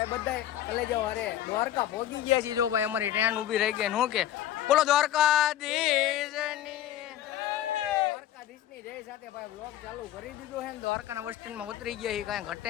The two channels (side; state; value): right; quieter; 12.4 dB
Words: બધા કલેજાઓ અરે દ્વારકા પહોંચી ગયા છે. જો ભાઈ અમારી ટ્રેન ઊભી રહી ગઈ શું કે બોલો દ્વારકાધીશની જય સાથે ભાઈ બ્લોગ ચાલુ કરી દીધો છે. દ્વારકાના બસ સ્ટેન્ડમાં ઉતરી ગયા છે. કાંઈ ઘટે